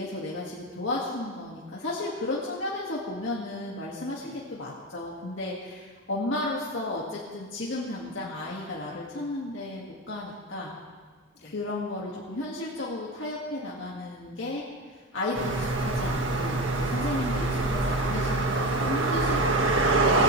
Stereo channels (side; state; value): both; normal; correlation 0.21